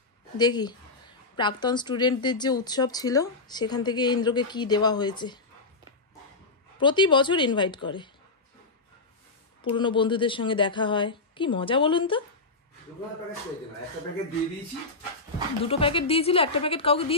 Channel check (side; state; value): right; quieter; 3.5 dB